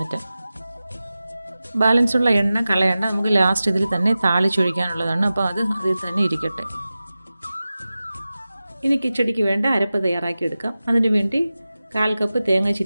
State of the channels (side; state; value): both; inverted; correlation -0.95